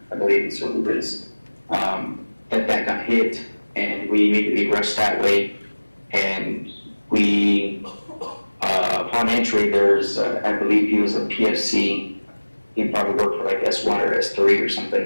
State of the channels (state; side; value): inverted; both; correlation -1.00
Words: I believe is what it is. That got hit, and we immediately rushed that way, and we. Upon entry, there's, I believe he was a PFC. He probably worked for like S1 or S3 or